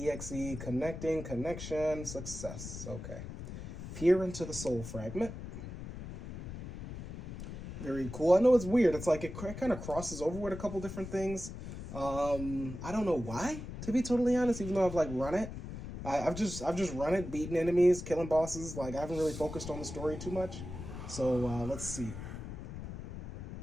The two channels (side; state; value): left; noise; rumble, 9 dB below the sound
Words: connecting, connection, success. Okay. Peer into the soul fragment. Very cool. I know it's weird. It's like it kind of crosses over with a couple different things. I don't know why, to be totally honest, even though I've like run it. I've just run it, beaten enemies, killing bosses. Like I haven't really focused on the story too much. So let's see.